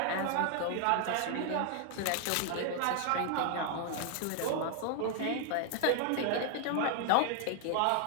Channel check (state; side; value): different; both; correlation 0.00